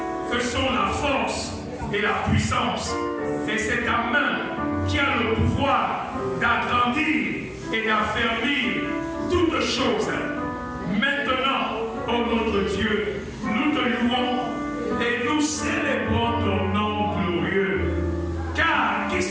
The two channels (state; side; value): identical; both; correlation 1.00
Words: que sont la force et la puissance. Et c'est ta main qui a le pouvoir d'agrandir et d'affermir toutes choses. Maintenant, ô notre Dieu, nous te louons et nous célébrons ton nom glorieux. Car qui